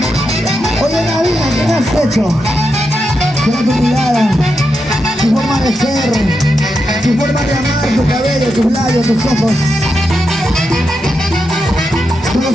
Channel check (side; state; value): both; normal; correlation 0.86